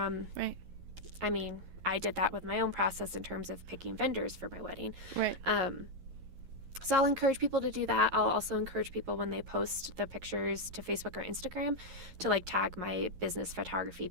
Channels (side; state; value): left; late; 11 ms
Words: I mean, I did that with my own process in terms of picking vendors for my wedding. Right. So I'll encourage people to do that. I'll also encourage people, when they post the pictures to Facebook or Instagram, to, like, tag my business photography